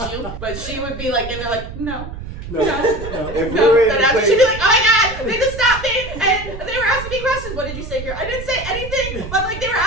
you. But she would be like, and they're like, no. No. If we No, were in then the after place, she'd be like, oh my god, they just stopped me and they were asking me questions. What did you say here? I didn't say anything, but like they were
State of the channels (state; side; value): noise; right; rumble, 10 dB below the sound